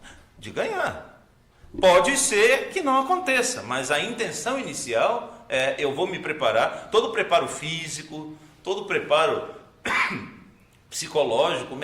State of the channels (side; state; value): both; identical; correlation 1.00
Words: de ganhar. Pode ser que não aconteça, mas a intenção inicial é: eu vou me preparar, todo o preparo físico, todo o preparo psicológico,